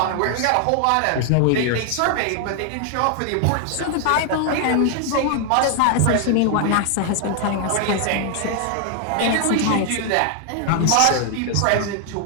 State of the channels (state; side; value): different; both; correlation 0.00